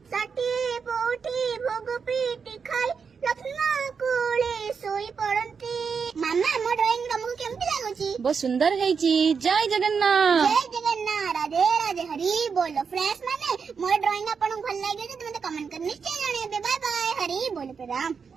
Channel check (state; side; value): quieter; left; 5.9 dB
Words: 60 ପୋଟି ଭୋଗ ପେଟି ଖାଇ ଲକ୍ଷ୍ମୀ ମା କୋଳେ ଶୋଇ ପଡନ୍ତି। ମାମା ମୋ ଡ୍ରଇଂ ତମକୁ କେମିତି ଲାଗୁଛି? ବହୁତ ସୁନ୍ଦର ହେଇଛି। ଜୟ ଜଗନ୍ନାଥ। ଜୟ ଜଗନ୍ନାଥ। ରାଧେ ରାଧେ ହରି ବୋଲ। ଫ୍ରେଣ୍ଡସ୍ ମାନେ ମୋ ଡ୍ରଇଂ ଆପଣଙ୍କୁ ଭଲ ଲାଗିଛି ତ ମତେ କମେଣ୍ଟ କରି ନିଶ୍ଚୟ ଜଣେଇବେ। Bye bye. ହରି ବୋଲ ପ୍ରଣାମ।